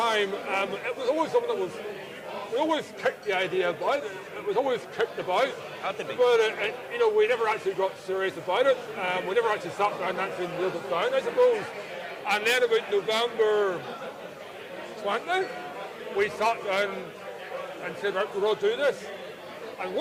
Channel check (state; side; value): identical; both; correlation 1.00